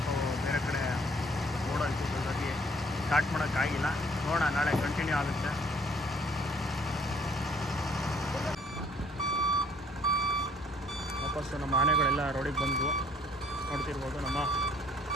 ಬೇರೆ ಕಡೆ ಓಡೋಯ್ತು. ಹಾಗಾಗಿ ಸ್ಟಾರ್ಟ್ ಮಾಡೋಕ್ಕಾಗಿಲ್ಲ. ನೋಡೋಣ, ನಾಳೆ ಕಂಟಿನ್ಯೂ ಆಗುತ್ತೆ. ವಾಪಸ್ಸು ನಮ್ಮ ಆನೆಗಳೆಲ್ಲ ರೋಡಿಗೆ ಬಂದು ನೋಡ್ತಿರ್ಬೋದು. ನಮ್ಮ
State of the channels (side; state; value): both; normal; correlation 0.60